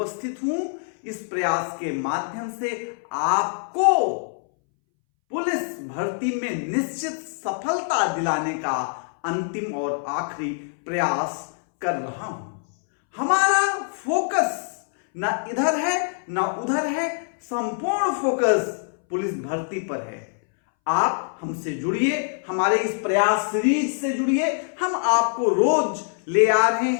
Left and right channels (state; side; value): silent; right; 62 dB below the other